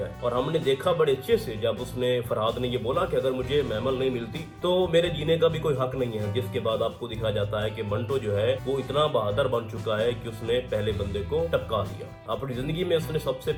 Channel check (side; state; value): both; identical; correlation 1.00